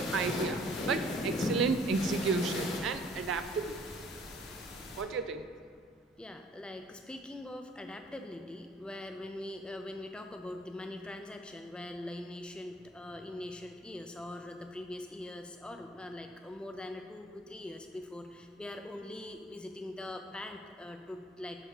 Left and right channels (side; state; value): both; normal; correlation 0.56